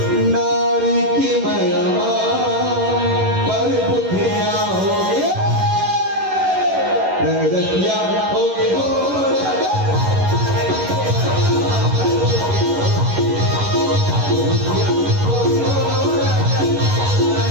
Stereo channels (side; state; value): left; late; 11 ms